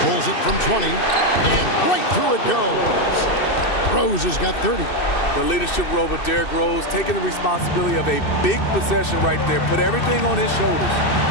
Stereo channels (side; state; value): right; late; 2.6 ms